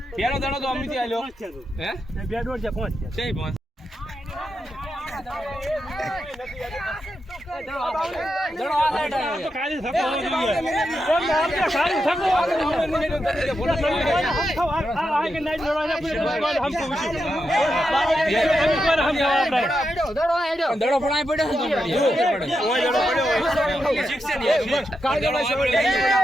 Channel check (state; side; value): normal; both; correlation 0.86